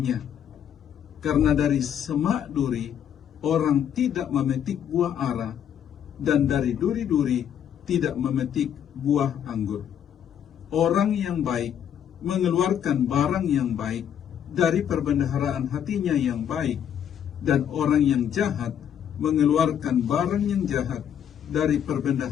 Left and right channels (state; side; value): quieter; right; 9.2 dB